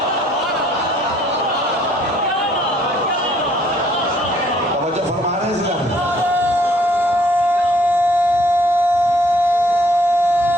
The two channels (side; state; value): both; normal; correlation 0.62